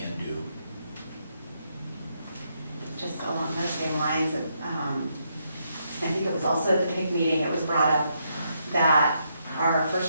do. Just along those same lines, I think it was also at the PIC meeting, it was brought up that our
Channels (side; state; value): both; inverted; correlation -0.78